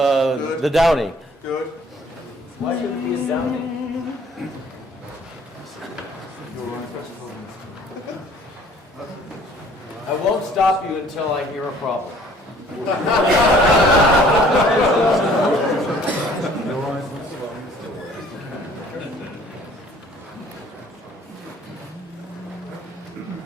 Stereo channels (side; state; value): both; normal; correlation 0.56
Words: Downy. Good. Why should it be a Downy? I won't stop you until I hear a problem.